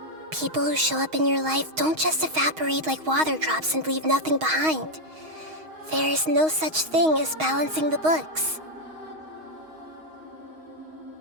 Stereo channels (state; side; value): late; left; 6.3 ms